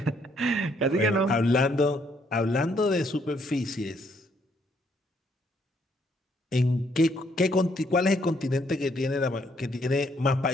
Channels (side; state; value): both; normal; correlation 0.70